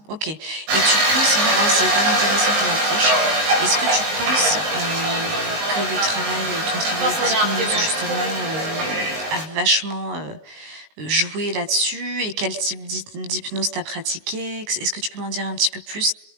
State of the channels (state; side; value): late; left; 19 ms